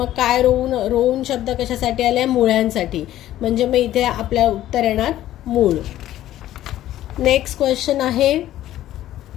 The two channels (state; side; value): quieter; right; 13.5 dB